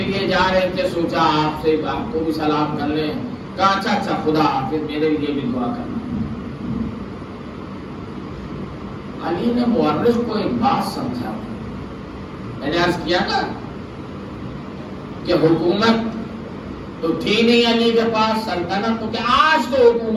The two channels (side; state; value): both; identical; correlation 1.00